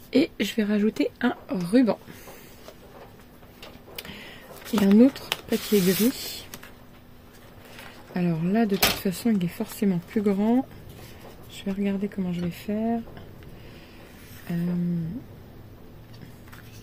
Et je vais rajouter un ruban. Et un autre papier gris. Alors là, de toute façon, il est forcément plus grand. Je vais regarder comment je vais faire.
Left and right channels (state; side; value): identical; both; correlation 1.00